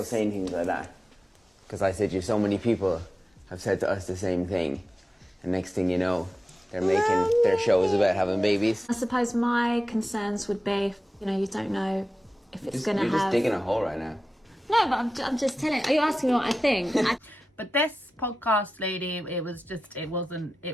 saying things like that, because I said you, so many people have said to us the same thing, and next thing you know, they're making their shows about having babies. I suppose my concerns would be, you know, you don't know if it's going to have... You're just digging a hole right now. No, but I'm just telling... Are you asking me what I think? But this podcast lady, it was just, it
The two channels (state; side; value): normal; both; correlation 0.94